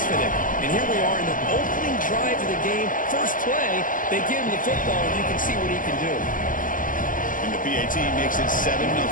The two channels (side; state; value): right; late; 0.39 ms